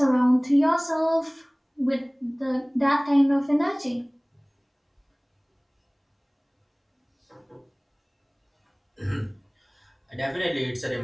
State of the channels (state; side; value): identical; both; correlation 1.00